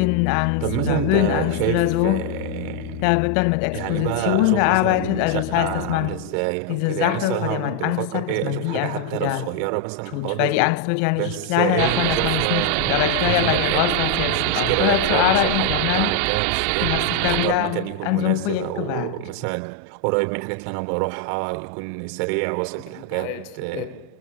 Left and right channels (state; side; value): different; both; correlation 0.01